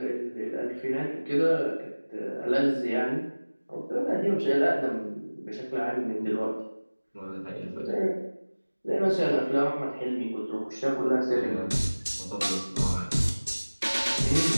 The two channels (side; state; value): both; inverted; correlation -1.00